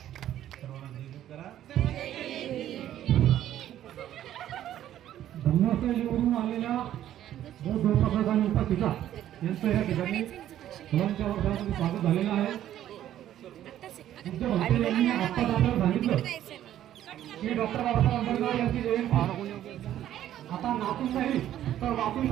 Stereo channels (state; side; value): quieter; left; 11.9 dB